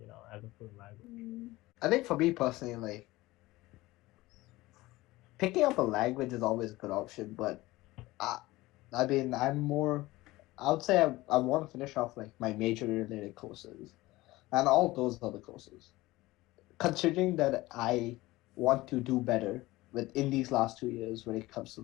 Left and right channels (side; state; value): right; quieter; 19.1 dB